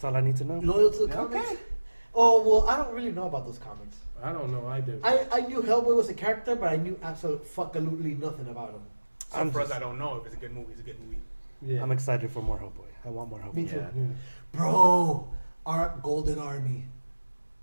all I need to know. Loyal to the comics? Oh, well, I don't really know about those comics. I don't know. I do. I knew Hellboy was a character, but I knew absolutely nothing about him. So for us, I don't know if it's a good movie. It's a good movie. Yeah. I'm excited for more Hellboy. I want more Hellboy. Me too. Yeah. Bro, our Golden Army.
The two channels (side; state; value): both; inverted; correlation -1.00